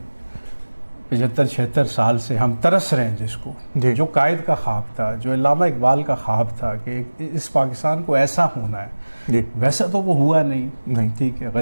75-76 साल से हम तरस रहे हैं, जिसको, जो कायद का ख्वाब था, जो अल्लामा इकबाल का ख्वाब था कि इस पाकिस्तान को ऐसा होना है, वैसा तो वो हुआ नहीं। ठीक है,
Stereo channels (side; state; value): both; inverted; correlation -1.00